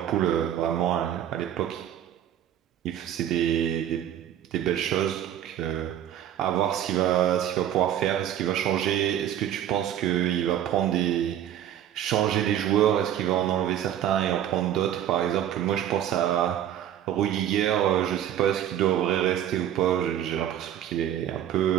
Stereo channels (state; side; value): quieter; left; 10.9 dB